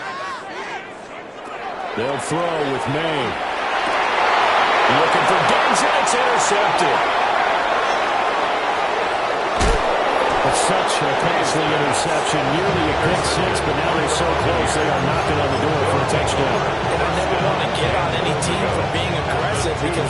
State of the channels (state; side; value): identical; both; correlation 1.00